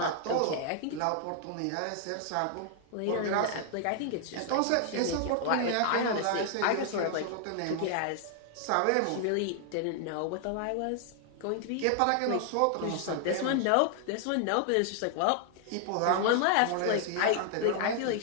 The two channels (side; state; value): both; different; correlation 0.00